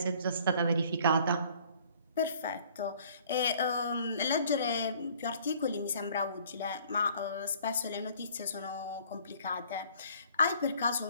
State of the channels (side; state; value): both; inverted; correlation -0.56